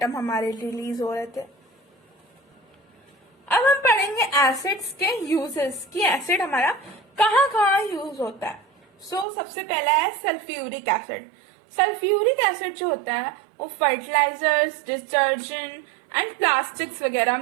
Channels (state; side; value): drops out; left; at 9.2 s